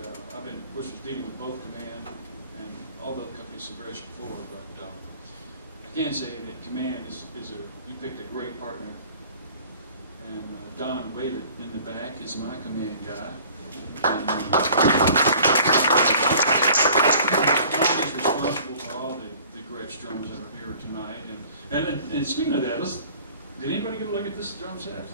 I've been, of course, dealing with both Command and all the other companies in Gretsch before, but I can say that Command you picked a great partner. And Don Whaley in the back is my Command guy. And, Don is responsible for all the Gretsch drums that are here tonight. And speaking of that, did anybody get a look at this drum set?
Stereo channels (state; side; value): inverted; both; correlation -0.50